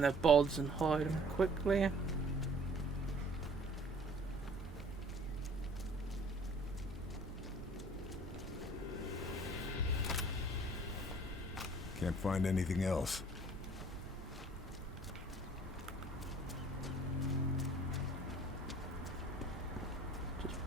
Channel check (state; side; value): normal; both; correlation 0.53